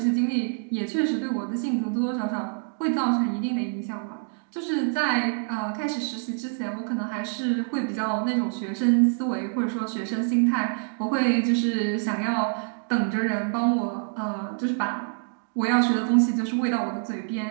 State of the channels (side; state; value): left; silent; 61 dB below the other